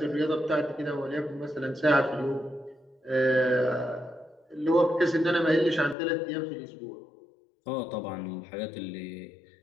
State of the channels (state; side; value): drops out; right; at 6.0 s